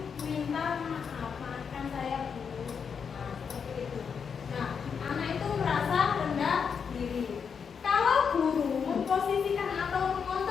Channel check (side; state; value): right; quieter; 6.5 dB